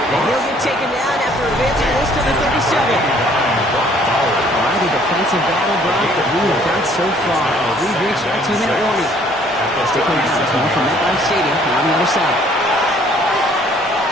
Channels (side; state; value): both; normal; correlation 0.60